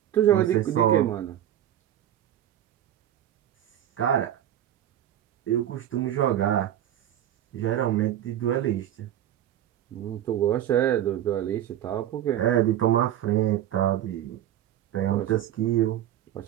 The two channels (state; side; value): quieter; left; 11.6 dB